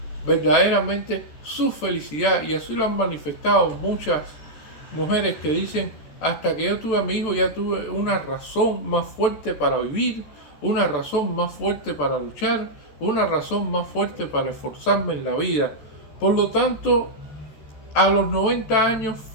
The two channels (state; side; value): late; right; 14 ms